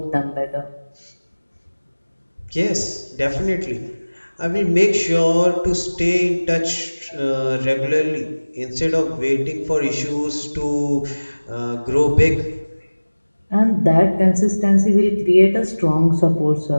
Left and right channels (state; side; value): inverted; both; correlation -1.00